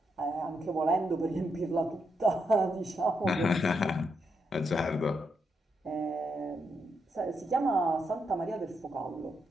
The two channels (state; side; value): normal; both; correlation 0.81